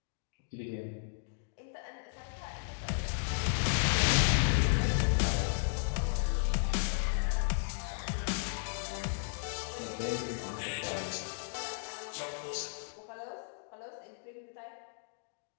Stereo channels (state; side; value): silent; right; digital silence